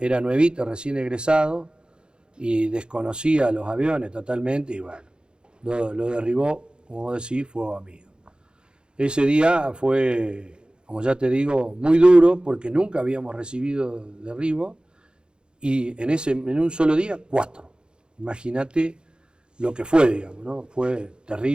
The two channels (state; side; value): late; left; 0.050 ms